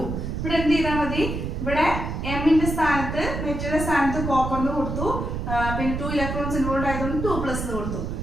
ഇവിടെ എന്ത് ചെയ്താൽ മതി? ഇവിടെ എമ്മിന്റെ സ്ഥാനത്ത് മെറ്റലിന്റെ സ്ഥാനത്ത് കോപ്പറിന് കൊടുത്തു, പിന്നെ 2 ഇലക്ട്രോൺസ് ഇൻവോൾവ് ആയതുകൊണ്ട് 2+ കൊടുത്തു.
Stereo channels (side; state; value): right; noise; rumble, 4 dB below the sound